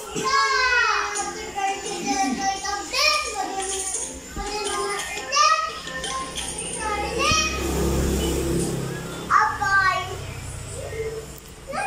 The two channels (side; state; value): both; identical; correlation 1.00